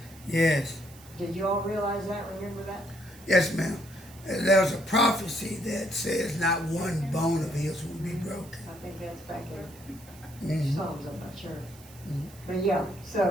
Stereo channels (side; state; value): right; noise; hiss, 22 dB below the sound